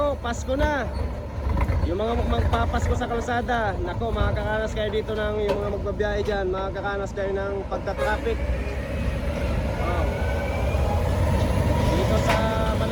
Pasko na. Yung mga magpapasko sa kalsada, nako, makakaranas kayo dito ng yung mga magbabiyahe dyan, makakaranas kayo ng pagta-traffic. Oh. Dito sa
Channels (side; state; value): both; identical; correlation 1.00